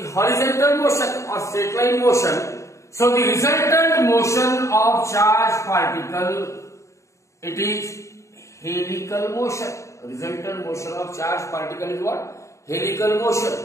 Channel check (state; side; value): late; right; 0.14 ms